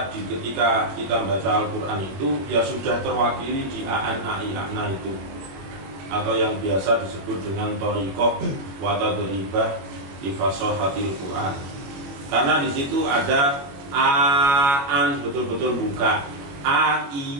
ketika kita baca Al-Quran itu ya sudah terwakili di a'an, a'i, a'na itu, atau yang biasa disebut dengan thariqah wa tadribah li fasahatil Quran. Karena di situ ada a'an betul-betul buka,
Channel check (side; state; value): left; late; 22 ms